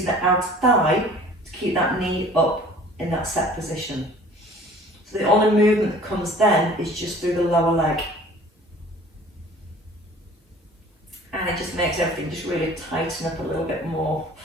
the outer thigh to keep that knee up in that set position. So the only movement that comes then is just through the lower leg. And it just makes everything just really tighten up a little bit more.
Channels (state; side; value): normal; both; correlation 0.48